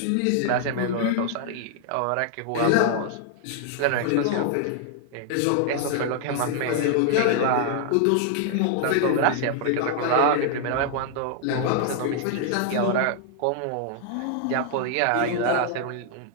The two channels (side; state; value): both; different; correlation -0.01